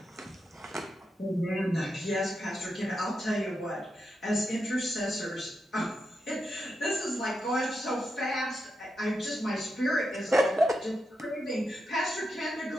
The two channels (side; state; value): both; normal; correlation 0.86